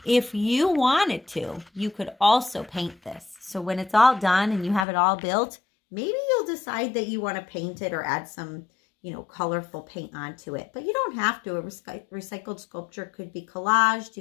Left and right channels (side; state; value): right; drops out; at 4.9 s